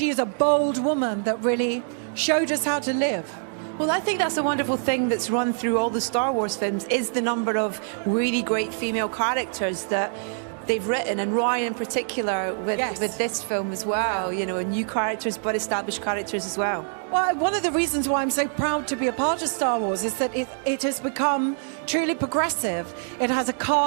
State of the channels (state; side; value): silent; left; digital silence